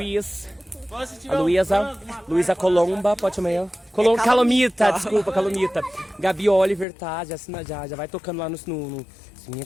Luísa Colomba, pode chamar ela? Calomita, desculpa, Calomita. Gabi Oliver, tá? Já vai tocando lá no sininho,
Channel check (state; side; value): drops out; right; at 6.9 s